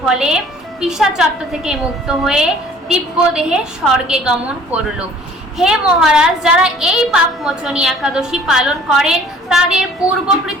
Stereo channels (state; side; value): normal; both; correlation 0.53